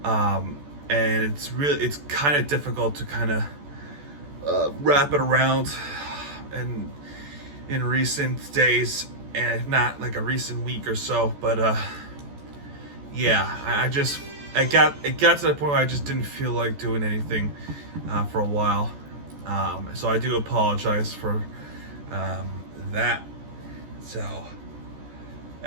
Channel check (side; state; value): left; late; 14 ms